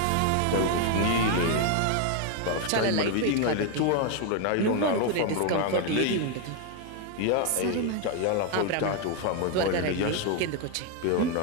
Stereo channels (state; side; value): different; both; correlation 0.01